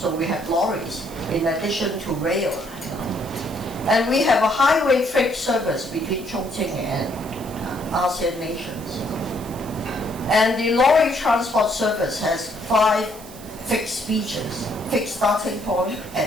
we have lorries in addition to rail. And we have a highway freight service between Chongqing and ASEAN nations. And the lorry transport service has 5 fixed features: fixed starting point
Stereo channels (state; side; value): noise; right; hiss, 18 dB below the sound